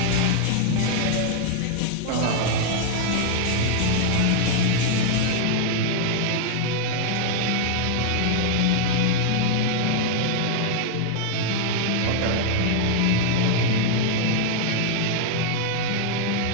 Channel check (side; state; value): both; different; correlation 0.00